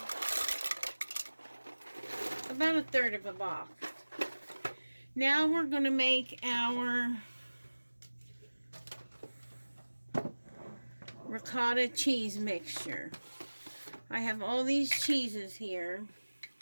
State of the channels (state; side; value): inverted; both; correlation -1.00